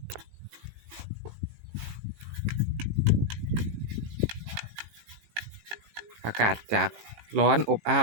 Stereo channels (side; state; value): left; late; 18 ms